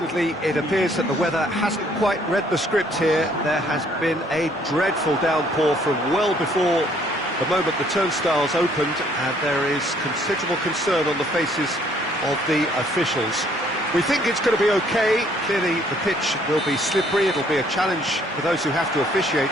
it appears that the weather hasn't quite read the script here. There has been a dreadful downpour from well before the moment the turnstiles opened, and there is considerable concern on the faces of the officials. We think it's going to be okay. Clearly, the pitch will be slippery. It'll be a challenge for those who have to officiate,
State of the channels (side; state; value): both; normal; correlation 0.63